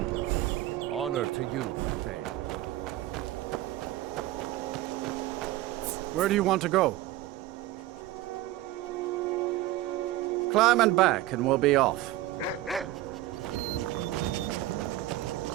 Honor to you, Thane. Where do you want to go? Climb and back, and we'll be off.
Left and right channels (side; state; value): left; quieter; 15.5 dB